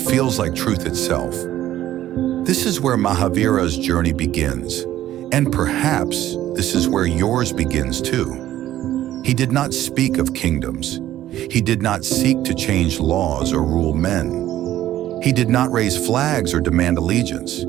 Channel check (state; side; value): quieter; left; 13.2 dB